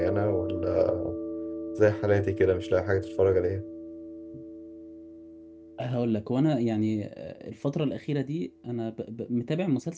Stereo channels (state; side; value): identical; both; correlation 1.00